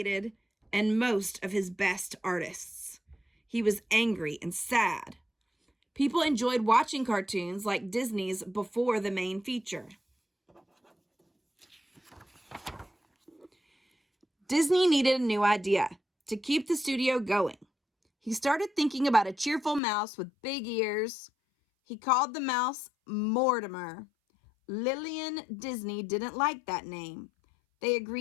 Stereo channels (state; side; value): drops out; right; at 19.8 s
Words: and most of his best artists. He was angry and sad. People enjoyed watching cartoons like Disney's before the main feature. Disney needed a new idea to keep the studio going. He started thinking about a cheerful mouse with big ears. He called the mouse Mortimer. Lillian Disney didn't like that name. They